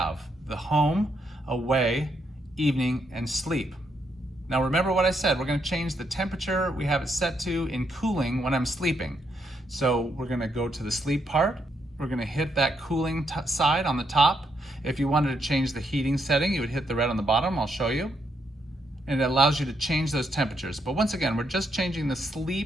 the home, away, evening, and sleep. Now remember what I said, we're going to change the temperature we have it set to in cooling when I'm sleeping. So we're going to go to the sleep part. We're going to hit that cooling side on the top. If you wanted to change the heating setting, you would hit the red on the bottom. I'll show you. And it allows you to change those temperatures. But once again, we're just changing the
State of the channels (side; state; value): both; normal; correlation 0.77